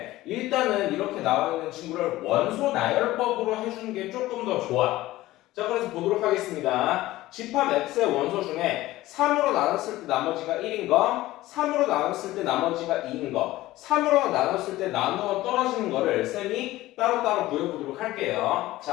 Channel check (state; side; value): quieter; right; 16.9 dB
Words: 일단은 이렇게 나와 있는 친구를 원소 나열법으로 해주는 게 조금 더 좋아. 자, 그래서 보도록 하겠습니다. 집합 x의 원소 중에 3으로 나눴을 때 나머지가 1인 거, 3으로 나눴을 때 나머지가 2인 거, 3으로 나눴을 때 나누어 떨어지는 거를 쌤이 따로따로 구해보도록 할게요.